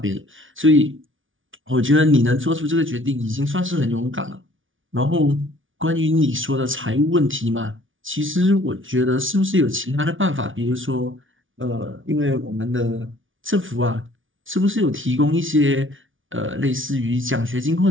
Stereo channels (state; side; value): late; left; 0.57 ms